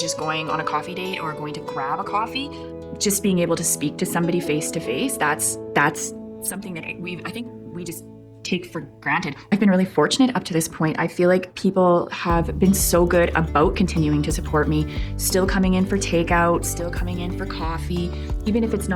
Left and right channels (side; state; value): both; identical; correlation 1.00